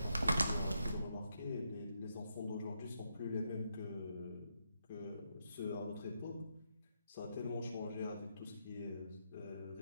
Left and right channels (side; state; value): both; inverted; correlation -0.80